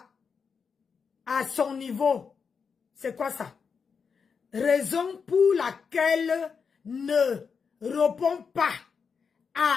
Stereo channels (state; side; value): quieter; right; 5.8 dB